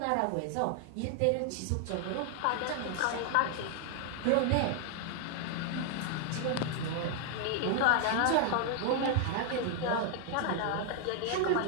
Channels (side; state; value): both; different; correlation 0.00